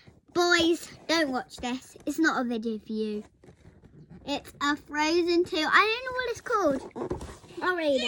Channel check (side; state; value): both; identical; correlation 1.00